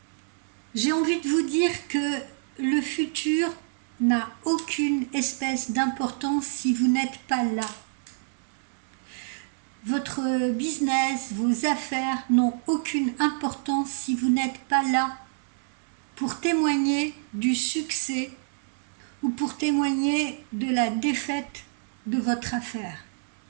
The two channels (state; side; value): silent; left; digital silence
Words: J'ai envie de vous dire que le futur n'a aucune espèce d'importance si vous n'êtes pas là. Votre business, vos affaires n'ont aucune importance si vous n'êtes pas là pour témoigner du succès ou pour témoigner de la défaite de votre affaire.